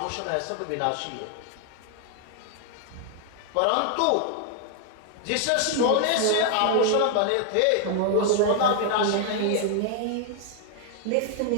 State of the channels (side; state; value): both; different; correlation 0.00